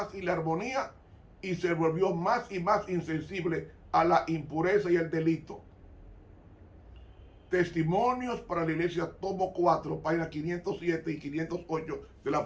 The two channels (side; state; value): both; identical; correlation 1.00